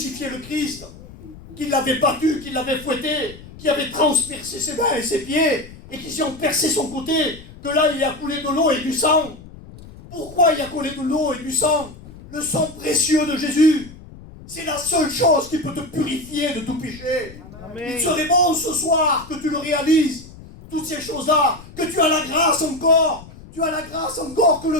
le Christ, qu'ils l'avaient battu, qu'ils l'avaient fouetté, qu'ils avaient transpercé ses mains et ses pieds, et qu'ils ont percé son côté, que là il y a coulé de l'eau et du sang. Pourquoi il y a coulé de l'eau et du sang? Le sang précieux de Jésus. C'est la seule chose qui peut te purifier de tout péché. Amen. Il serait bon ce soir que tu le réalises. Toutes ces choses-là, que tu as la grâce encore. Tu as la grâce encore que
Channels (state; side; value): noise; left; rumble, 18 dB below the sound